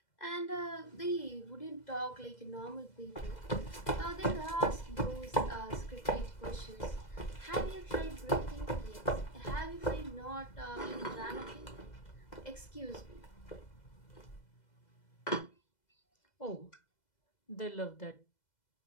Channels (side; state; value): right; late; 2.0 ms